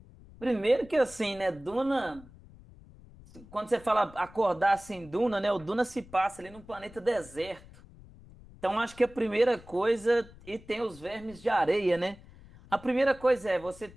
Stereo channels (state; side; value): noise; left; rumble, 21 dB below the sound